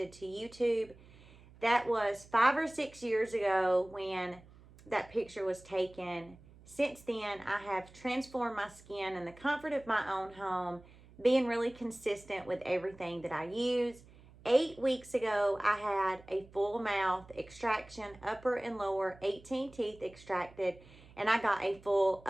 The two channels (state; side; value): noise; right; hum, 23 dB below the sound